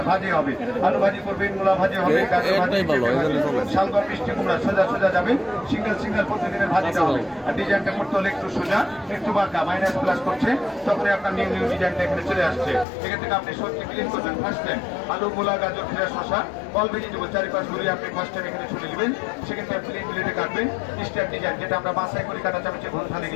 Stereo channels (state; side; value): drops out; right; at 12.9 s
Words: ভাজি হবে, আলু ভাজি করবেন, মূলা ভাজি হবে, গাজর ভাজি, শালগম, মিষ্টি কুমড়া, সোজা সোজা যাবেন। সিঙ্গেল সিঙ্গেল প্রতিদিনের ভাজিটা হবে। আর ডিজাইনটা করতে হলে একটু সোজা একটু বাঁকা মাইনাস প্লাস করছে, তখন আপনার নিউ নিউ ডিজাইনটা এখানে চলে আসছে। এখান থেকে আপনি সবজি ক্লিন করবেন ফার্স্ট টাইম, আলু, মূলা, গাজর, ফ্রেশ শসা, অল ভেজিটেবল চারিপাশ ঘুরিয়ে আপনি ফার্স্ট টাইম এখানে ছুটে নেবেন। সেক্ষেত্রে প্লেন প্লেটে কাটবেন স্টার ডিজাইন, যেটা আমরা বাসায় করে কাটা চামচে ঘন্টা